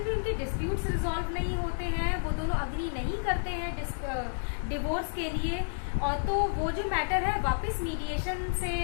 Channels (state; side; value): silent; right; digital silence